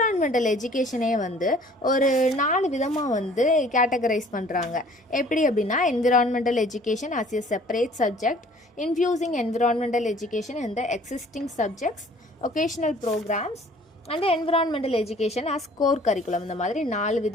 educationே வந்து ஒரு 4 விதமாக வந்து கேட்டகரைஸ் பண்ணுறாங்க. எப்படி அப்படின்னா environmental education as a separate subject, infusing environmental education in the existing subjects, occasional programs, and environmental education as core curriculum. இந்த மாதிரி 4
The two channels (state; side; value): normal; both; correlation 0.53